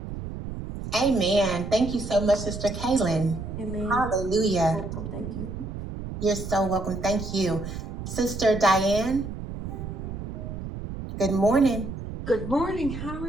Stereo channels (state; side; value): noise; right; rumble, 8 dB below the sound